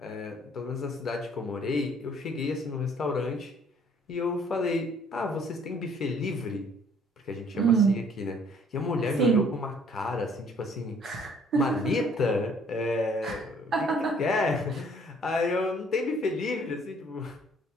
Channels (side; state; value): both; normal; correlation 0.59